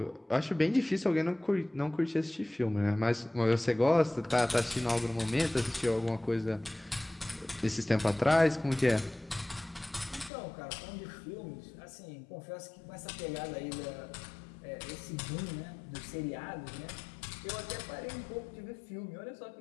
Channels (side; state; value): right; drops out; at 10.3 s